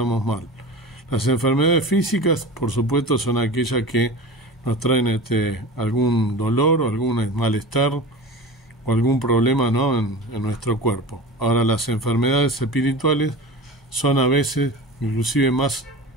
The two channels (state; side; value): normal; both; correlation 0.32